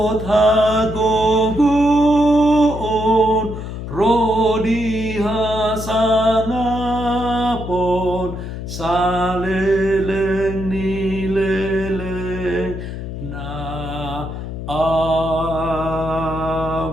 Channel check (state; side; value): noise; left; hum, 7 dB below the sound